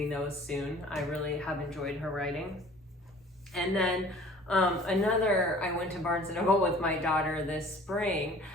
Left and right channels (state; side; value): normal; both; correlation 0.49